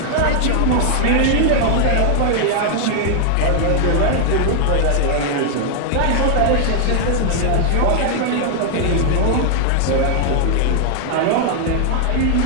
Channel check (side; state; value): both; different; correlation 0.00